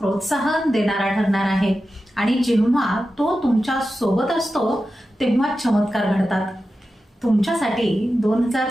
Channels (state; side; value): normal; both; correlation 0.92